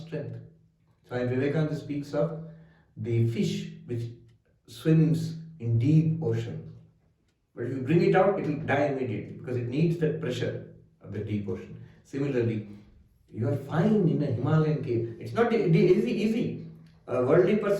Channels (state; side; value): identical; both; correlation 1.00